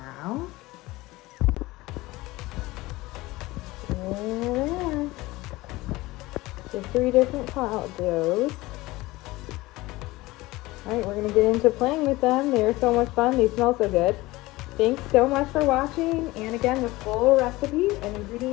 now. There they are. The 3 different cloud doughs. All right, we're gonna get into playing with them. They're so much fun, they smell so good. Thanks so much for watching, and again, the full recipe and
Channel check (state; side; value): quieter; right; 19.8 dB